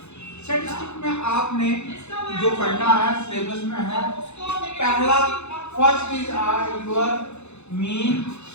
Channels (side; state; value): right; late; 0.81 ms